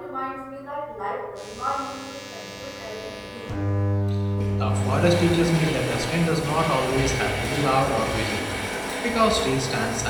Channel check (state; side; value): identical; both; correlation 1.00